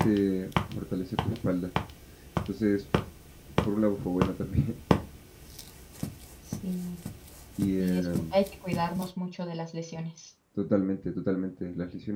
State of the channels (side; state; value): both; identical; correlation 1.00